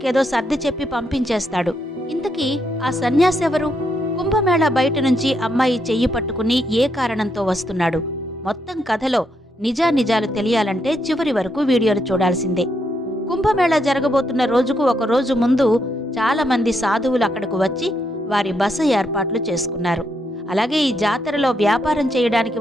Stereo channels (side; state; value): both; normal; correlation 0.78